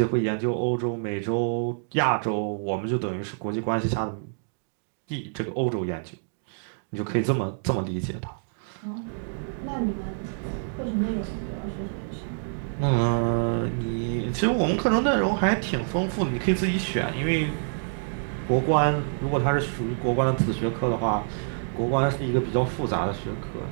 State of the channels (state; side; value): silent; left; digital silence